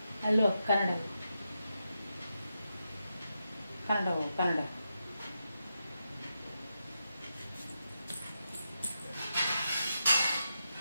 ಅಲ್ಲೋ ಕನ್ನಡ ಕನ್ನಡ ಕನ್ನಡ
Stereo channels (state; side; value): inverted; both; correlation -0.86